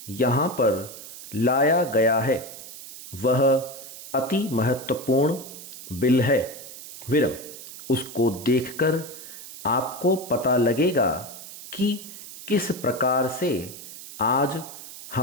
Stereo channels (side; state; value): right; noise; hiss, 14 dB below the sound